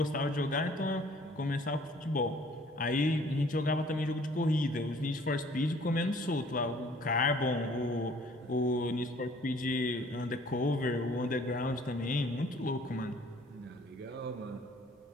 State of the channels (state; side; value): normal; both; correlation 0.55